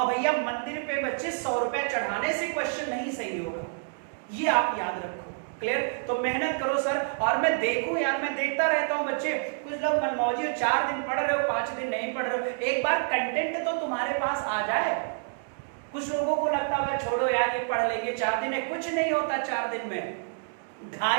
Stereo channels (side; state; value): left; silent; digital silence